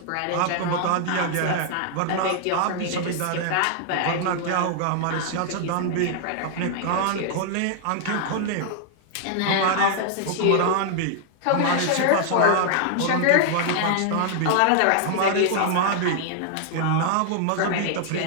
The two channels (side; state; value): both; different; correlation 0.00